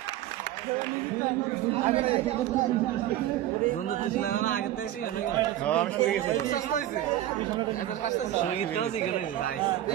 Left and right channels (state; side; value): quieter; left; 13.4 dB